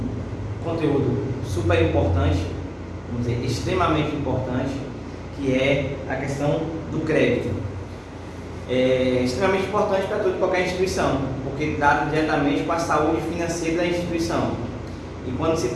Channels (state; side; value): identical; both; correlation 1.00